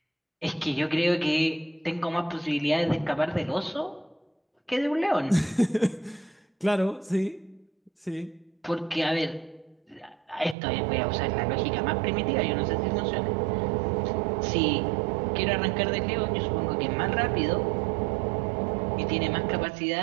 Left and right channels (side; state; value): left; drops out; at 10.6 s